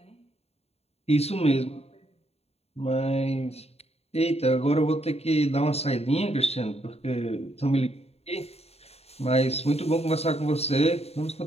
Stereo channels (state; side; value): late; right; 0.30 ms